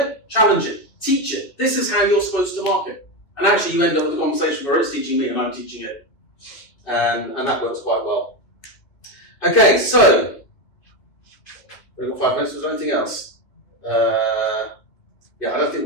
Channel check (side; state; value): right; late; 2.8 ms